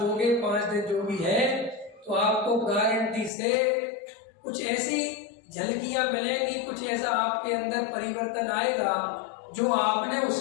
दोगे, 5 दिन जो भी है, तो आपको गारंटी से कुछ ऐसी झलकियां मिलेंगी, कुछ ऐसा आपके अंदर परिवर्तन आएगा जो आपने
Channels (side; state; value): right; drops out; at 3.3 s